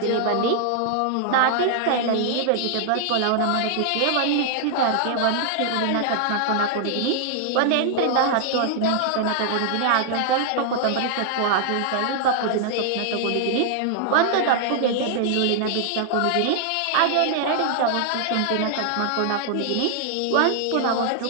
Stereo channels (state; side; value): different; both; correlation -0.01